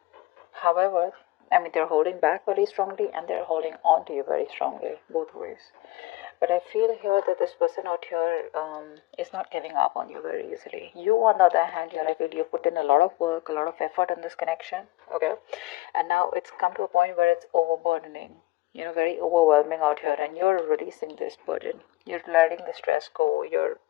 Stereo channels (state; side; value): quieter; right; 19.3 dB